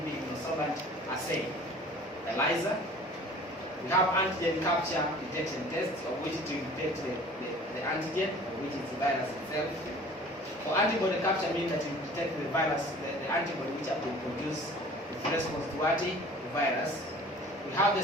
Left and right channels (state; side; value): normal; both; correlation 0.46